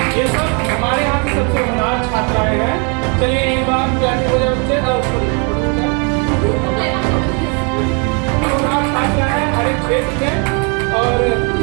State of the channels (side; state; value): left; quieter; 35.8 dB